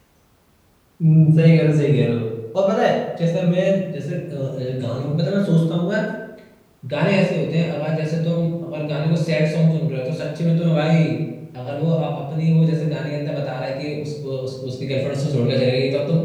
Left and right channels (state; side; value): identical; both; correlation 1.00